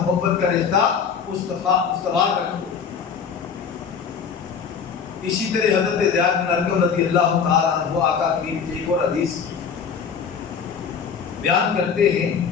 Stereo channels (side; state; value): right; quieter; 6.5 dB